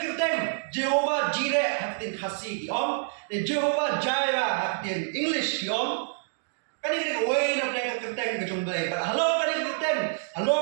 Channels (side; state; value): left; silent; digital silence